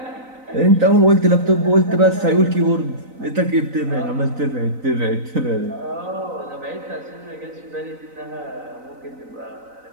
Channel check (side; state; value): left; late; 3.9 ms